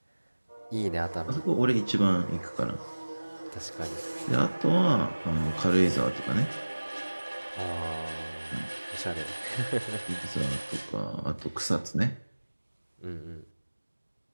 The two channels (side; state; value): both; inverted; correlation -1.00